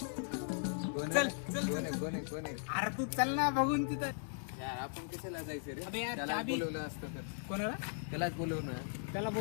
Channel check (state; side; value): silent; right; digital silence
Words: चल चल कोण आहे? अरे तू चल ना बघून तिथं. यार आपण कशाला जायचं रे? अबे यार, त्याला चाबी- बोलवलं असतं तर. कोणाला? त्यालाच बोलवणं. त्याला